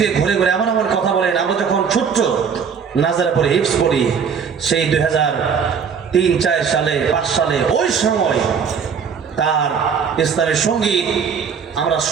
ঘুরে ঘুরে এমন এমন কথা বলেন। আমরা যখন ছোট্ট নাজারা পড়ি, হিফজ পড়ি, সেই 2003-4 সালে 5 সালে ওই সময় তার ইসলামের সঙ্গীত আমরা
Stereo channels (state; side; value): quieter; left; 6.6 dB